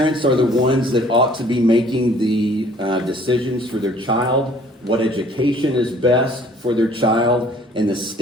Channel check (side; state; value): both; normal; correlation 0.56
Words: are the ones that ought to be making the decisions for their child, what education is best for their child, and the